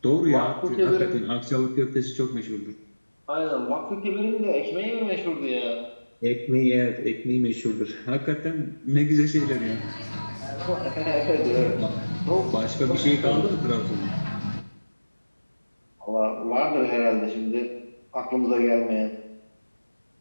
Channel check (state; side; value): inverted; both; correlation -1.00